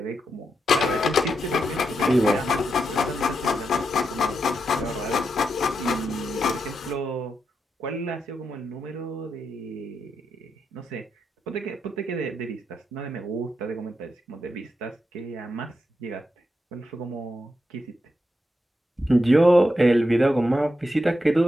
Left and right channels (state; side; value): normal; both; correlation 0.85